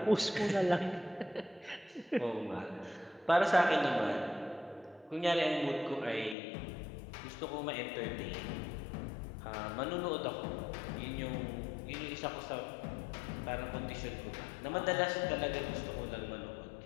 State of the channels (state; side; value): drops out; right; at 6.4 s